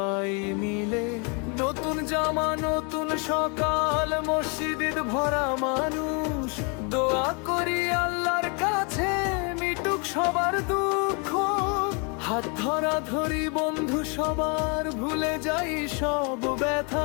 মিলে। নতুন জামা নতুন সকাল, মসজিদ ভরা মানুষ, দোয়া করি আল্লাহর কাছে মিটুক সবার দুঃখ। হাত ধরা ধরি বন্ধু সবার, ভুলে যাই সব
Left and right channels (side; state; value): right; quieter; 34.8 dB